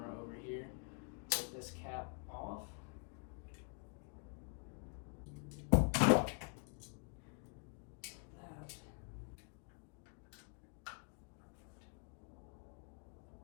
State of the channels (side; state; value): right; quieter; 39.9 dB